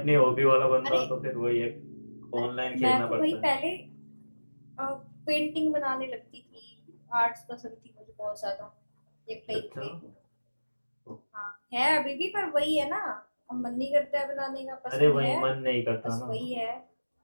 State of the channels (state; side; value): inverted; both; correlation -1.00